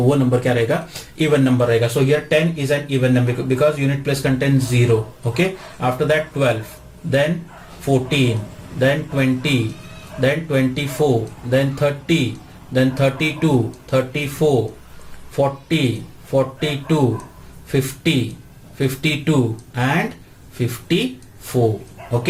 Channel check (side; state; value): both; identical; correlation 1.00